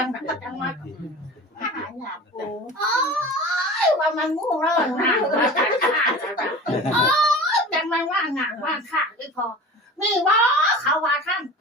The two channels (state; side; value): normal; both; correlation 0.36